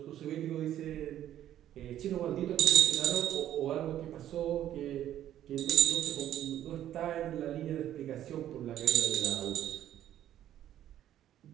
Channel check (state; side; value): quieter; left; 11.8 dB